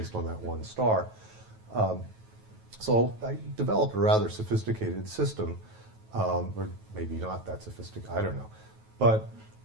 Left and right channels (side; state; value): left; late; 9.2 ms